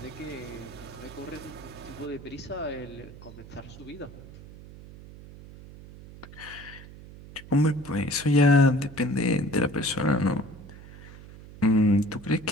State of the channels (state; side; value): noise; right; hum, 17 dB below the sound